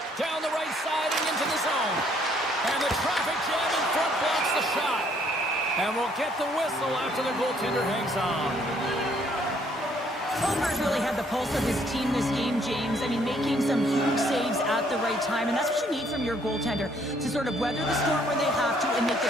Down the right side and into the zone. And the traffic jam in front blocks the shot. And we'll get the whistle after the goaltender hangs on. Homer's really had the pulse of his team this game, James. I mean, making some huge saves at the right time, and that's what you need from your goaltender, to sort of weather the storm when they have to and make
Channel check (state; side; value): normal; both; correlation 0.65